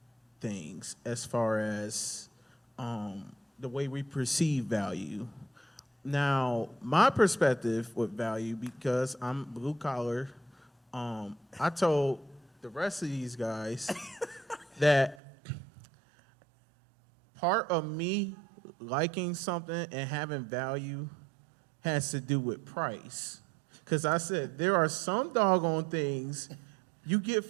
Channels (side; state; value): left; drops out; at 15.2 s